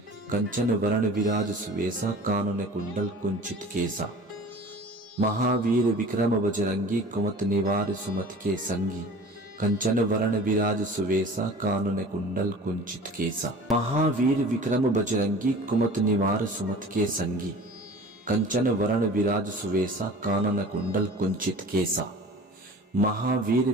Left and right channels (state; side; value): normal; both; correlation 0.42